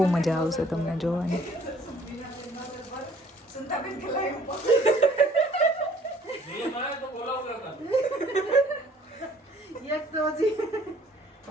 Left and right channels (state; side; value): normal; both; correlation 0.56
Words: મજા આવશે તમને જોવાની.